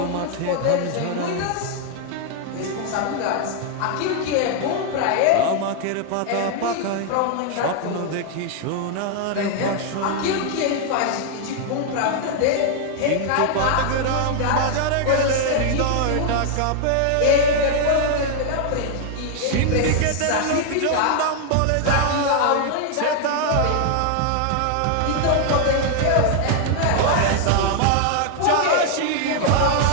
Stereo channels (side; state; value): both; different; correlation 0.00